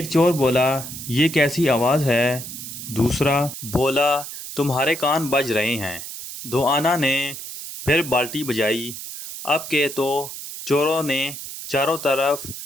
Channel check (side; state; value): right; noise; hiss, 10 dB below the sound